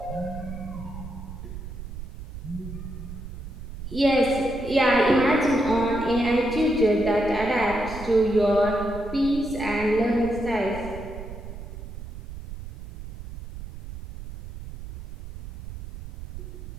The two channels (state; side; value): noise; right; rumble, 11 dB below the sound